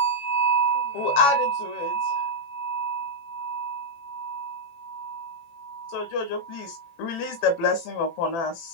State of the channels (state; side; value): late; right; 18 ms